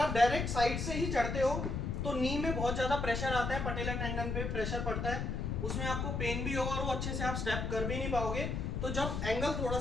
डायरेक्ट साइड से ही चढ़ते हो तो नी में बहुत ज्यादा प्रेशर आता है, पटेला टेंडन पे प्रेशर पड़ता है, उसमें आपको पेन भी होगा और वो अच्छे से आप स्टेप कर भी नहीं पाओगे। तो जब एंगल थोड़ा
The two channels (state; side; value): noise; left; rumble, 2 dB below the sound